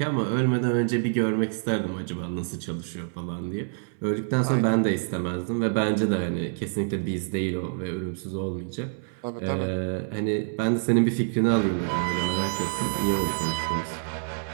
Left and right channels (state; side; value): silent; left; 60 dB below the other